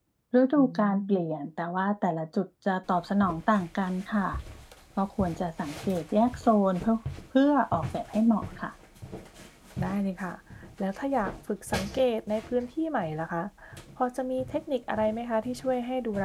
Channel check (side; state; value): both; identical; correlation 1.00